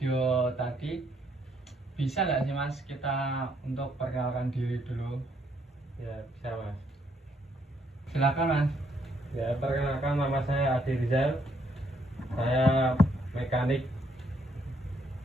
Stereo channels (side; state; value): both; normal; correlation 0.72